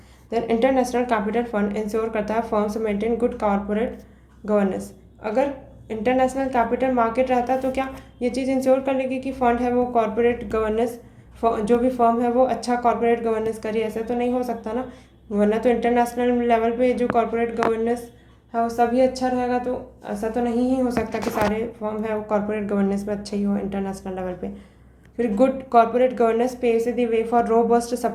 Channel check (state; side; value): identical; both; correlation 1.00